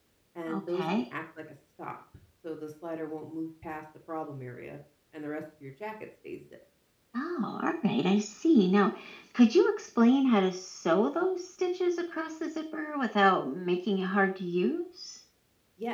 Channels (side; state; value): both; identical; correlation 1.00